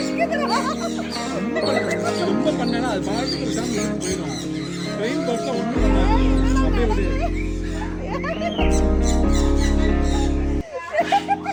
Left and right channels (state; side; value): identical; both; correlation 1.00